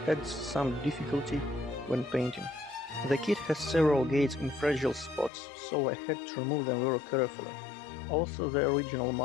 adds some difficulty when painting. The kit has several gates in fragile spots, so I had to remove them very carefully. Also, the original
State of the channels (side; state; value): right; drops out; at 5.3 s